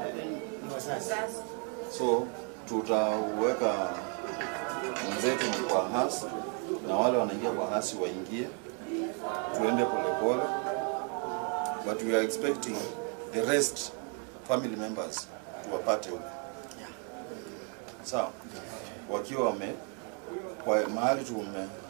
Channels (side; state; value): left; quieter; 39.3 dB